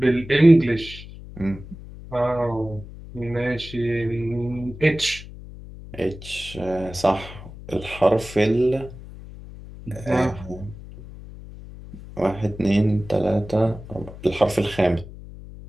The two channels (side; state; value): left; noise; hum, 15 dB below the sound